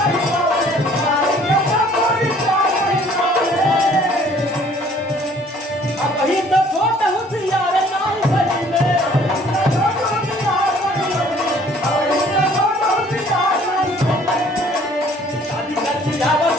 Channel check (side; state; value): both; normal; correlation 0.56